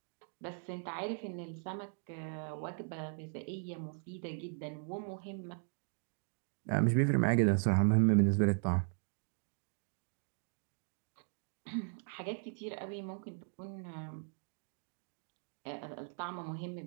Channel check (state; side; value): silent; left; 52 dB below the other